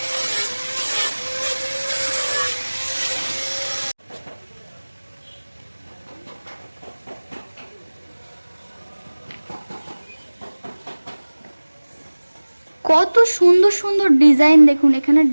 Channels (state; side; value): inverted; both; correlation -1.00